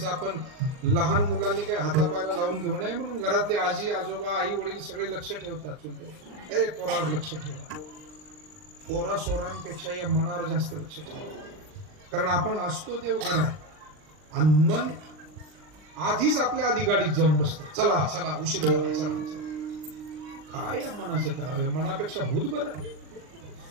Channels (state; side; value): late; left; 39 ms